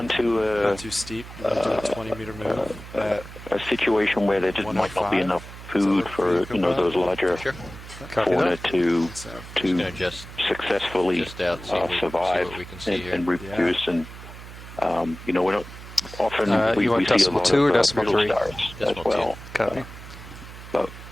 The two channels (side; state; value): right; noise; hum, 14 dB below the sound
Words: to not too steep. We'll do a 20-meter move. a situation where there just might not be 105. enough food for those larger Sure. fauna to Gonna just successfully out, see what survive we can see here. and reproduce. And we're not often we you want see a decimal lot 2 or of decimal brittle 3? stars as Decimal well. Copy. But